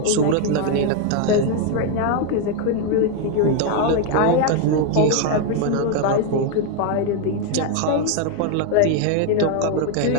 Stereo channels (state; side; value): different; both; correlation 0.01